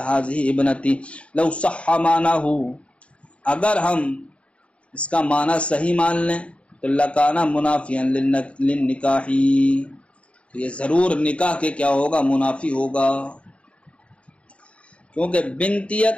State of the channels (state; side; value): late; right; 0.062 ms